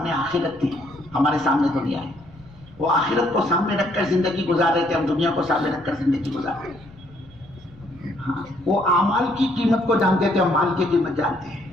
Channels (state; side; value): noise; left; rumble, 23 dB below the sound